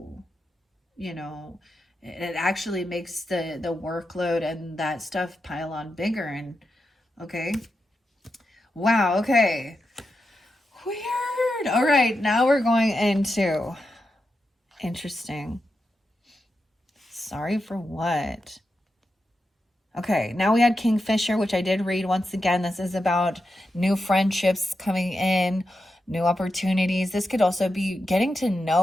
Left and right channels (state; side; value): normal; both; correlation 0.88